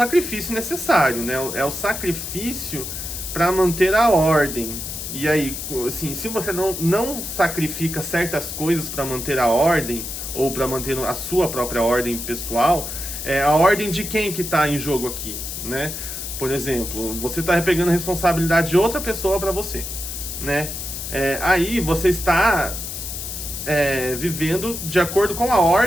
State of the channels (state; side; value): noise; left; hiss, 7 dB below the sound